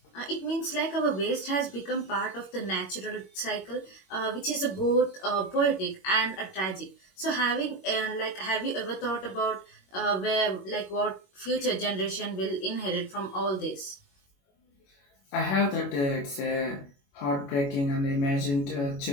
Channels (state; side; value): late; right; 21 ms